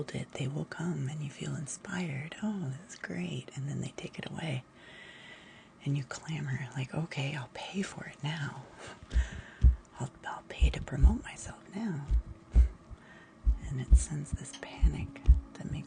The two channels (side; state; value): both; identical; correlation 1.00